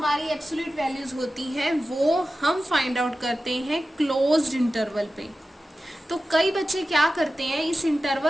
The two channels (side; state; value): both; normal; correlation 0.94